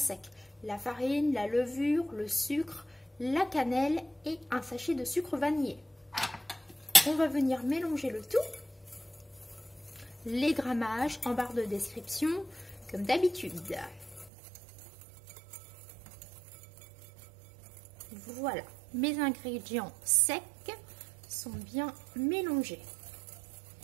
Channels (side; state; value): left; drops out; at 14.3 s